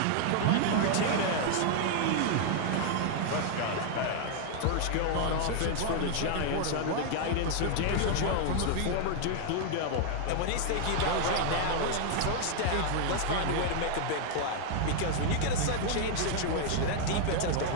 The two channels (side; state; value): both; different; correlation 0.00